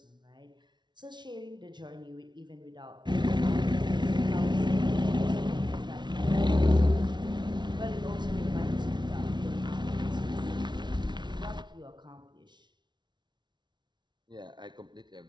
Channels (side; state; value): left; late; 0.21 ms